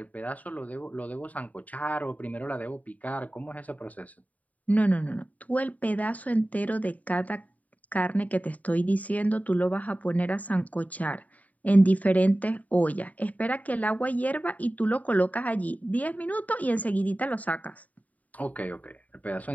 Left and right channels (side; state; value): right; late; 0.072 ms